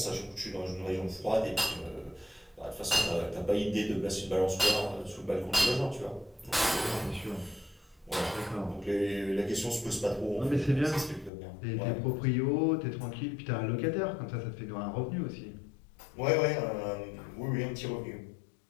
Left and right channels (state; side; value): drops out; right; at 11.3 s